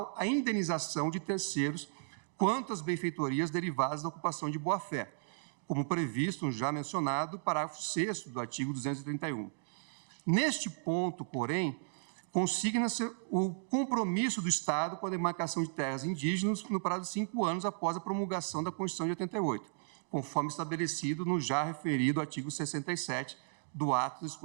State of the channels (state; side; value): silent; left; digital silence